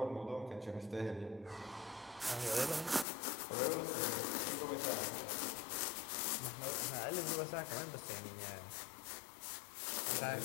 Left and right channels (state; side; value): drops out; right; at 3.1 s